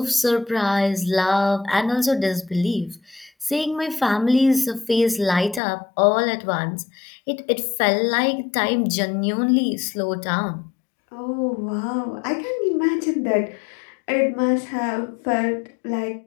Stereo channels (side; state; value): right; drops out; at 5.6 s